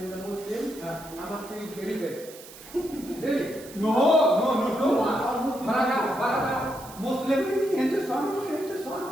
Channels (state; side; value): noise; right; hiss, 17 dB below the sound